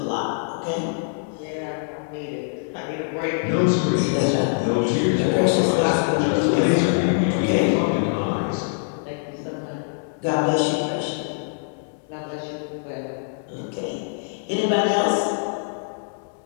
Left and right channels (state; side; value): silent; right; 63 dB below the other